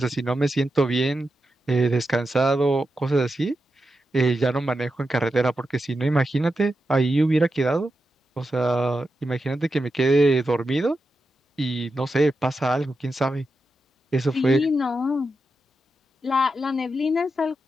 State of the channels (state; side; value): normal; both; correlation 0.88